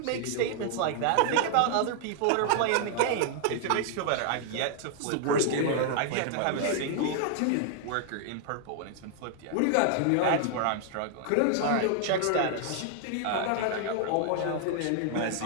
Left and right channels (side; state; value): both; different; correlation 0.00